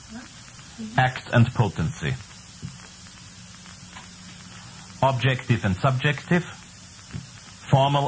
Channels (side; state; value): both; identical; correlation 1.00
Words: Act and potency. Objective and subjective.